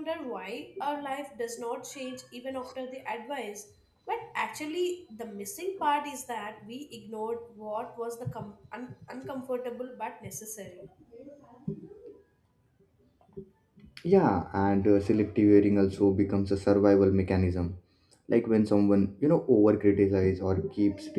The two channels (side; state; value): both; identical; correlation 1.00